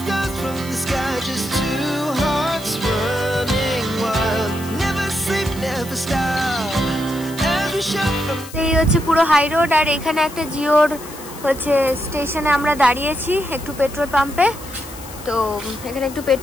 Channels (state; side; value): noise; left; hiss, 16 dB below the sound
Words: এই হচ্ছে পুরো হাই রোড, আর এখানে একটা জিওর হচ্ছে স্টেশনে আমরা দাঁড়িয়েছি একটু পেট্রোল পাম্পে। তো এখানে একটু